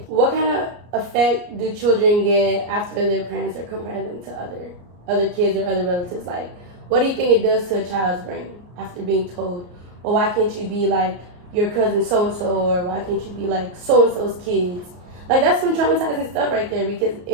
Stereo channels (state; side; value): late; left; 34 ms